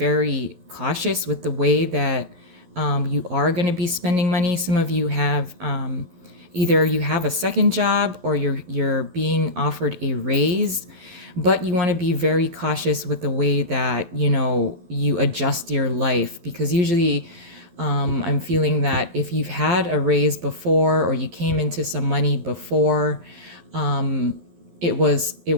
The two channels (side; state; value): left; late; 12 ms